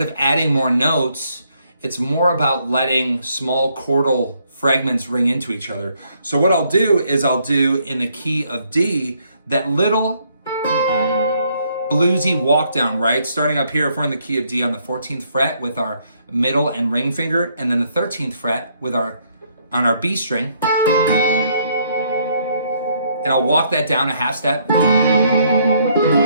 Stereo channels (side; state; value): both; inverted; correlation -0.70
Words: of adding more notes, it's more about letting small chordal fragments ring into each other. So what I'll do is I'll do in the key of D, that little bluesy walk down, right? Starting up here, if we're in the key of D on the 14th fret with our middle and ring finger, and then the 13th fret with on our B string. And I'll walk that down a half step.